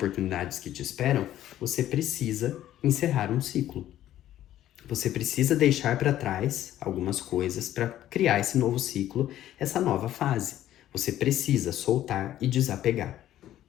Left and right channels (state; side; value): quieter; right; 12.7 dB